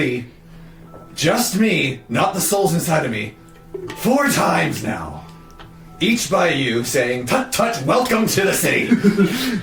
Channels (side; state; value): both; identical; correlation 1.00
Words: just me, not the souls inside of me, 4 times now. Each by you saying, "Tut tut, welcome to the city."